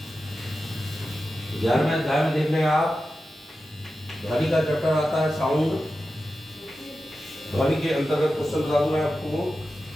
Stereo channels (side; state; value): both; normal; correlation 0.92